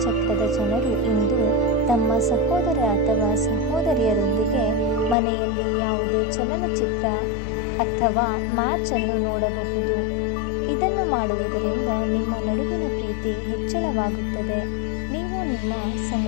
ಚಕ್ರದ ಜನರು ಇಂದು ತಮ್ಮ ಸಹೋದರ ಅಥವಾ ಸಹೋದರಿಯರೊಂದಿಗೆ ಮನೆಯಲ್ಲಿ ಯಾವುದೇ ಚಲನಚಿತ್ರ ಅಥವಾ ಮ್ಯಾಚ್ ಅನ್ನು ನೋಡಬಹುದು. ಇದನ್ನು ಮಾಡುವುದರಿಂದ ನಿಮ್ಮ ನಡುವಿನ ಪ್ರೀತಿ ಹೆಚ್ಚಳವಾಗುತ್ತದೆ. ನೀವು ನಿಮ್ಮ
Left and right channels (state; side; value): drops out; right; at 5.2 s